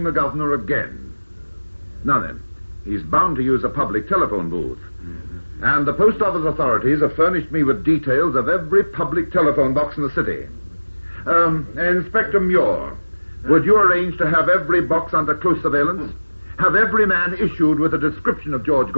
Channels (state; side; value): inverted; both; correlation -1.00